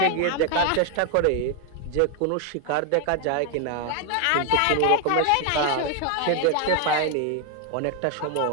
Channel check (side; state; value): both; different; correlation 0.00